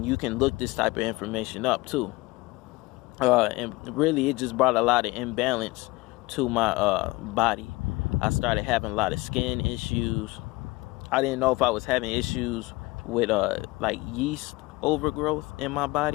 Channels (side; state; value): right; quieter; 22.0 dB